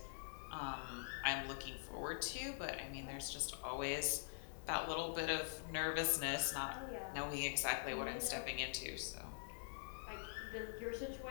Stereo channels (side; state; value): right; silent; digital silence